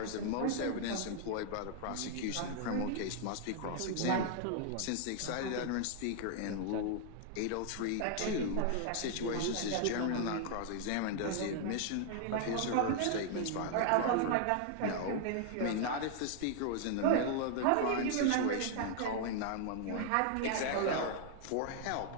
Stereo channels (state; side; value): different; both; correlation 0.00